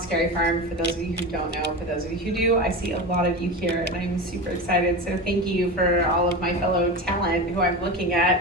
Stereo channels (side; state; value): both; normal; correlation 0.24